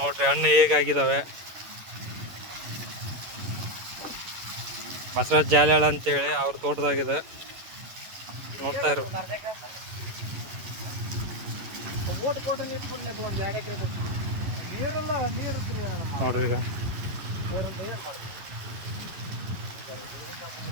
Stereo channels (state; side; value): late; left; 11 ms